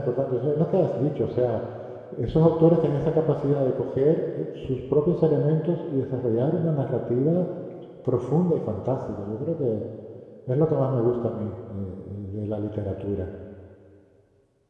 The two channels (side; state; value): both; identical; correlation 1.00